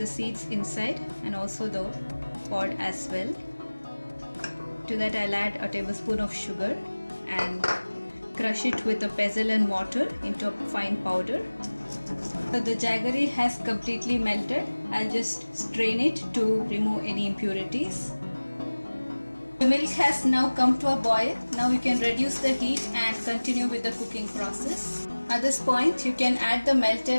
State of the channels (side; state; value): both; inverted; correlation -1.00